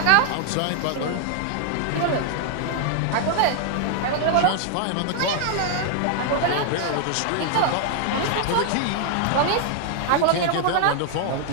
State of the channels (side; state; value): both; different; correlation 0.00